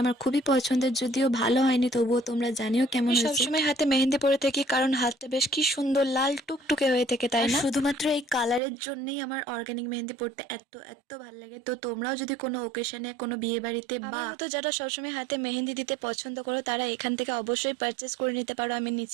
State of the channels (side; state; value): left; drops out; at 8.6 s